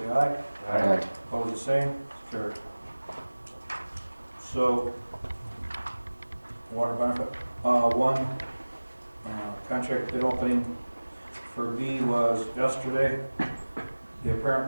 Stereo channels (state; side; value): inverted; both; correlation -1.00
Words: aye. Aye. Opposed, the same. Carried. So, water benefit, contract bid opening for B was yesterday. The